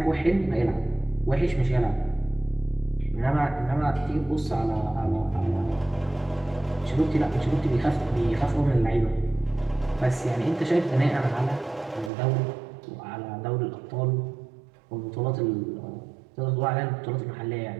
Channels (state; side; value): drops out; left; at 12.1 s